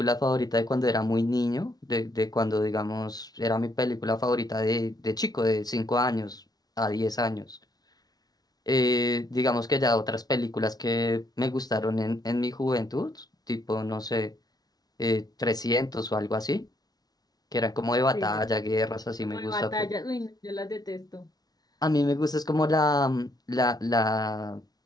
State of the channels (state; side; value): late; right; 0.19 ms